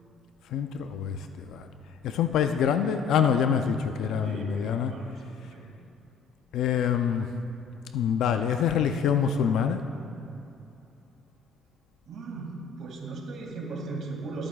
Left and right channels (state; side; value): quieter; right; 6.7 dB